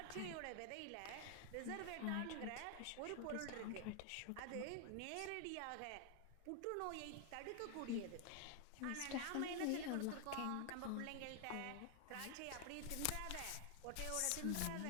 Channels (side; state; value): both; different; correlation 0.00